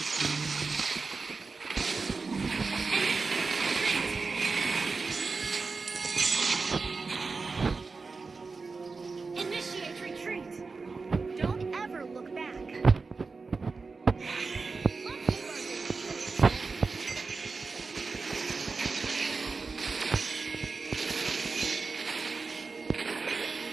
Initiate retreat. Don't ever look back.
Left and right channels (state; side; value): quieter; left; 4.3 dB